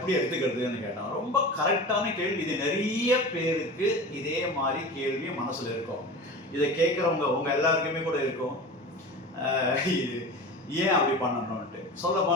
எடுத்துக்கிறதுன்னு கேட்டேன். ரொம்ப கரெக்டான கேள்வி. இது நிறைய பேருக்கு இதே மாதிரி கேள்வி மனசில் இருக்கும். இதை கேட்குறவங்க உங்கள் எல்லாருக்குமே கூட இருக்கும், இது ஏன் அப்படி பண்ணணும்ன்ட்டு. சொல்ல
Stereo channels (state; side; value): normal; both; correlation 0.32